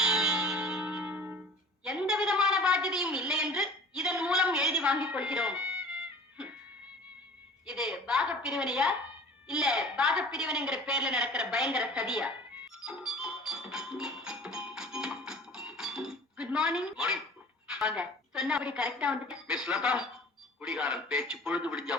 என்று இதன் மூலம் எழுதி வாங்கிக் கொள்கிறோம். இது பாக பிரிவினையா இல்ல பாக பிரிவினைங்கிற பேர்ல நடக்கிற பயங்கர சதியா? Good morning. வாங்க. சொன்னபடி கரெக்டா வந்துட்டு. மிஸ் லதா, குடிகாரன் பேச்சு பொழுது விடிஞ்சா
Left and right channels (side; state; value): both; normal; correlation 0.45